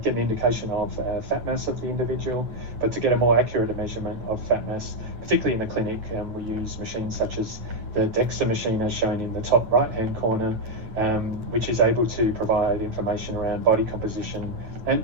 get an indication of fat mass of the individual. But to get a more accurate measurement of fat mass, particularly in the clinic, we use machines such as the DEXA machine, as shown in the top right-hand corner, which is able to provide information around body composition and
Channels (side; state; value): left; late; 9.2 ms